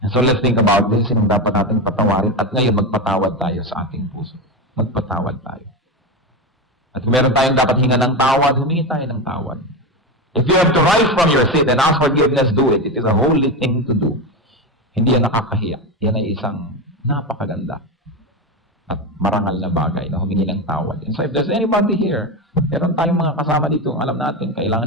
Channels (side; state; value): both; normal; correlation 0.16